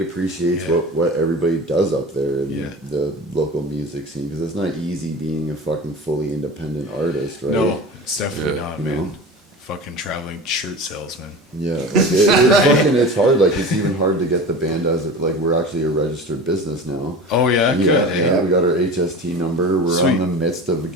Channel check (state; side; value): normal; both; correlation 0.33